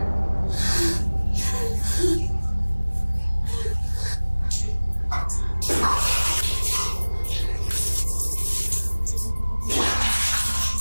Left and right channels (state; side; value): inverted; both; correlation -1.00